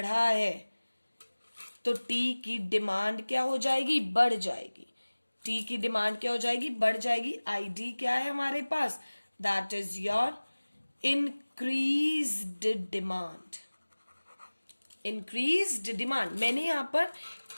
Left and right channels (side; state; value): both; inverted; correlation -1.00